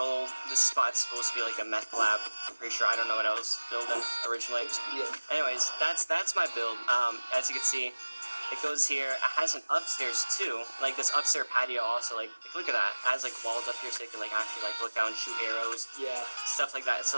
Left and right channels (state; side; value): inverted; both; correlation -1.00